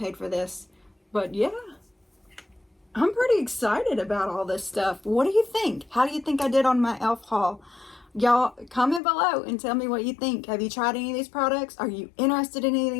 for this. But yeah, I'm pretty excited about all this stuff. What do you think? How do you think I did on my e.l.f. haul? Y'all, comment below and tell me what you think. Have you tried any of these products? Are you interested in any of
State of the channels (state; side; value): drops out; right; at 9.0 s